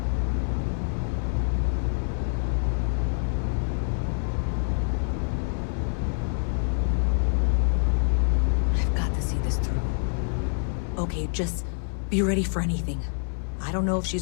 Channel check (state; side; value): silent; right; 60 dB below the other